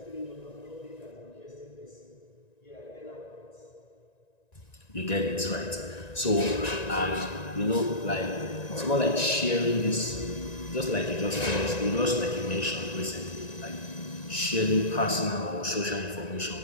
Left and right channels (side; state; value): right; late; 1.9 ms